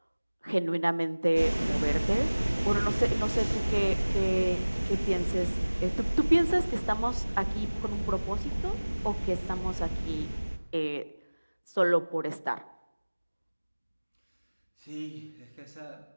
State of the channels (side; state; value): both; inverted; correlation -1.00